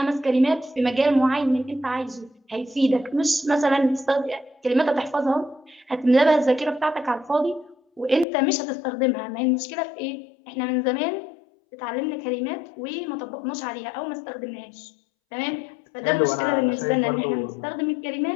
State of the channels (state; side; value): drops out; right; at 8.2 s